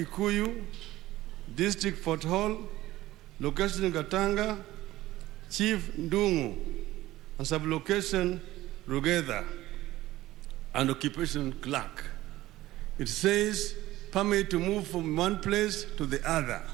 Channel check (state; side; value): quieter; left; 16.3 dB